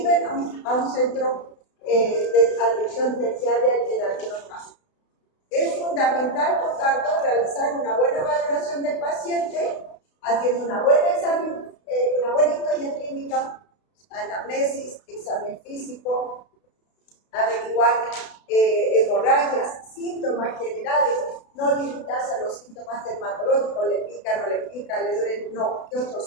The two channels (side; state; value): right; late; 32 ms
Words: a un centro de atención terciaria en algunos casos. Es fundamental, por tanto, realizar una buena valoración del paciente, haciendo una buena examen, una buena historia clínica, anamnesis, examen físico, averiguar hemorragias, síntomas generales, no limitarse a los síntomas dermatológicos, le pica, no le pica, le duele, no, ¿qué